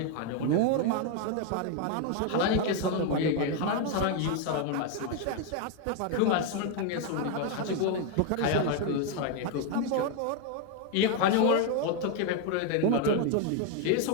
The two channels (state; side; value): different; both; correlation 0.01